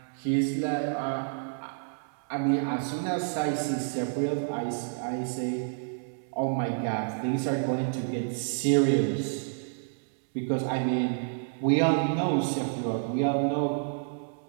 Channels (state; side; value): silent; left; 59 dB below the other